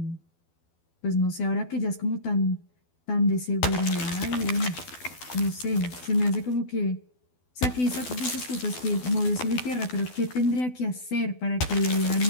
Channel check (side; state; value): right; late; 12 ms